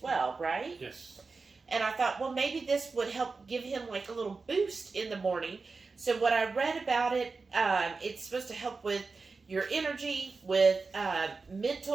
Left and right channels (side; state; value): left; quieter; 4.2 dB